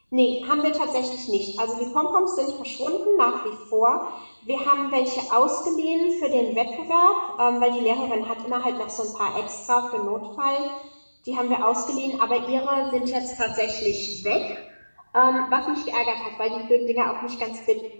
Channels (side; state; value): both; inverted; correlation -1.00